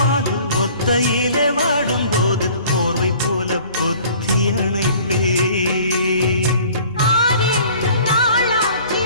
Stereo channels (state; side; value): inverted; both; correlation -0.50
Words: ஒத்தையிலே வாடும் போது போர்வை போல பொத்தி அணைப்பே.